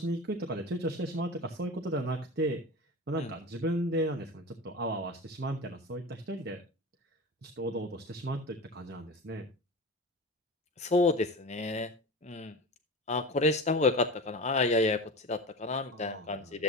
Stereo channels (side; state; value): both; normal; correlation 0.29